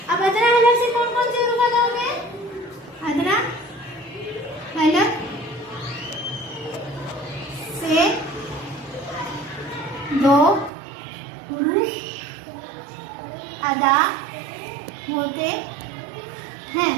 अब अदना हलक से कौन कौन से हुरूफ अदा होते हैं? अदना हलक से 2 हुरूफ अदा होते हैं।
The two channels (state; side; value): drops out; left; at 10.7 s